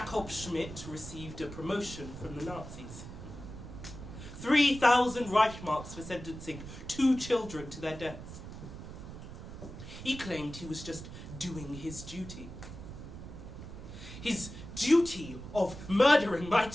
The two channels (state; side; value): noise; right; rumble, 11 dB below the sound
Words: Schmid received a promotion from the Nazis. 3,000 Reichmarks for sentencing 2 children to their deaths. He claimed he was just doing his duty. His duty of murdering my